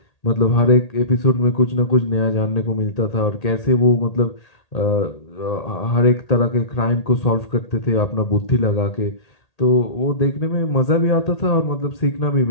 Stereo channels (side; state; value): right; late; 1.8 ms